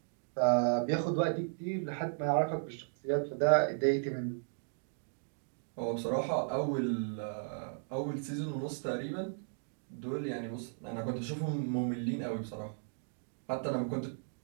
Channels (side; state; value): left; silent; digital silence